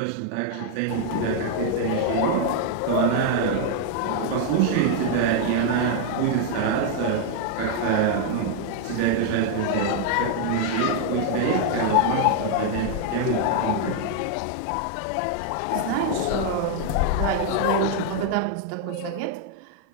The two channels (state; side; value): different; both; correlation 0.00